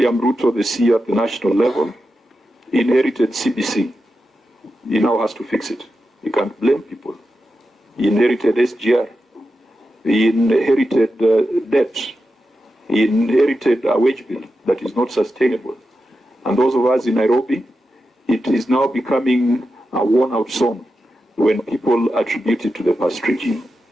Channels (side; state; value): both; normal; correlation 0.90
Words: Ruto, the CEO at the national level, inherited CBC. He now has to fix it. You can't blame people. He inherited SGR. He inherited debt. He inherited a wage bill that is not sustainable. And those of us in Nairobi, it is now becoming a worn-out song when people attribute it to the past regime.